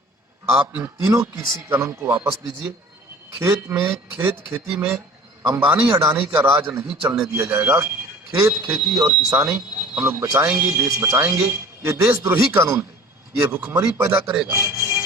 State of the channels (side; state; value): both; normal; correlation 0.45